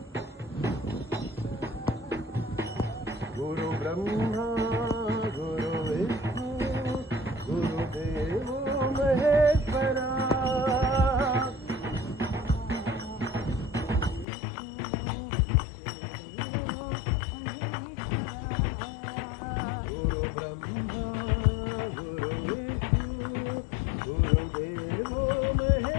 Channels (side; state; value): right; drops out; at 14.2 s